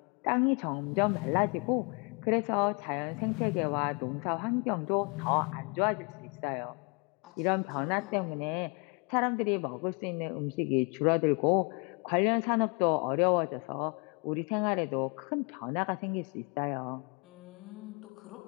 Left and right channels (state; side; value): quieter; right; 34.0 dB